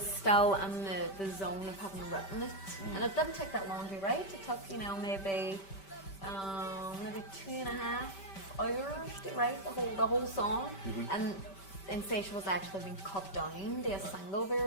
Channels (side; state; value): right; late; 5.1 ms